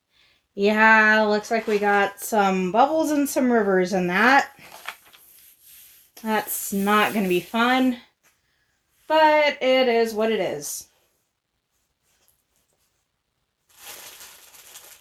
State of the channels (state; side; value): identical; both; correlation 1.00